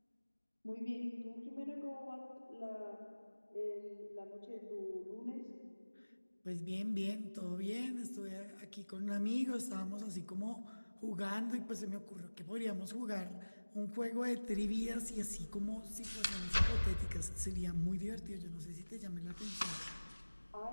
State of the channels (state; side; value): inverted; both; correlation -1.00